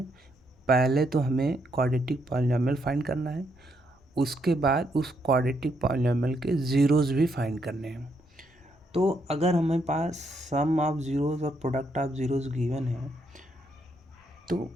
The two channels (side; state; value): both; normal; correlation 0.76